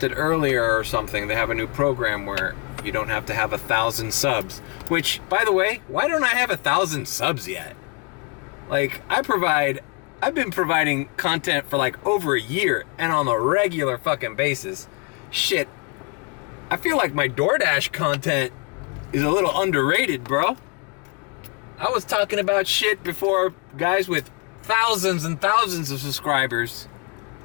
earlier or something? They have a new program where you don't have to have 1,000 subs. Which, by the way, why don't I have 1,000 subs yet? Like, I've been providing content for like over a year and on a regular fucking basis. Shit, I feel like my DoorDash content is a little underrated, bro. I was talking about shit before guys with thousands and thousands of subscribers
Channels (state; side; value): quieter; right; 32.7 dB